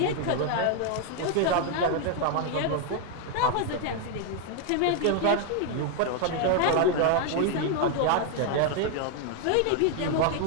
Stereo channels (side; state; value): both; different; correlation 0.01